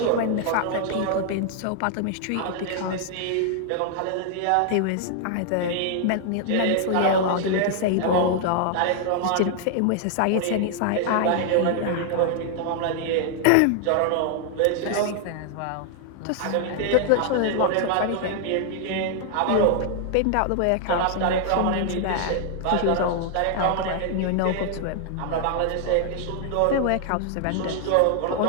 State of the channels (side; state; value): both; different; correlation 0.00